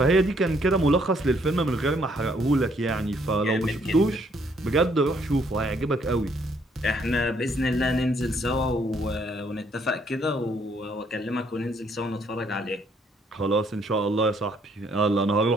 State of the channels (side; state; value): both; normal; correlation 0.68